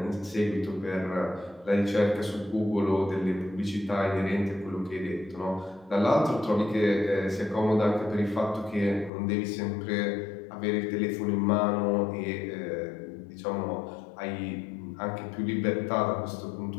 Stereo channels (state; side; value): drops out; right; at 9.1 s